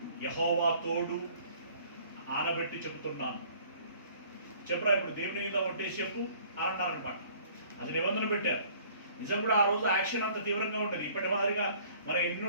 యెహోవా తోడు ఆనబెట్టి చెబుతున్నాను, చెప్పరా ఇప్పుడు దేవుని మీద ఒట్టేసి చెప్పు అన్నారనమాట. అది నిబంధన పెట్టారు. నిజం కూడా ఆ రోజు యాక్షన్ అంత తీవ్రంగా ఉంటుంది. ఇప్పటి మాదిరిగా మనం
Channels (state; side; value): inverted; both; correlation -0.55